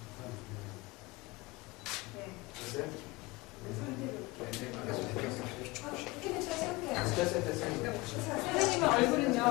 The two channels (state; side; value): quieter; right; 22.6 dB